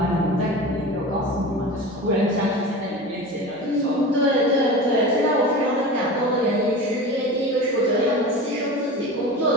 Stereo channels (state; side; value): normal; both; correlation 0.31